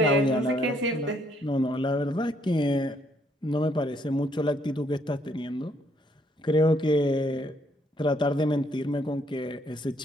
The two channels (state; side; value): normal; both; correlation 0.69